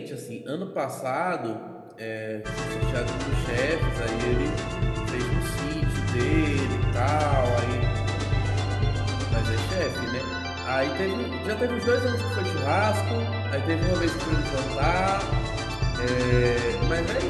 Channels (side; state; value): both; identical; correlation 1.00